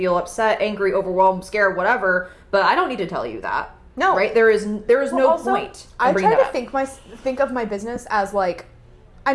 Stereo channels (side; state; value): both; identical; correlation 1.00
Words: upset, angry, overwhelmed, scared, whatever, but I don't need to tell you that. No. Right? There is no point. I try to think of my business as like, I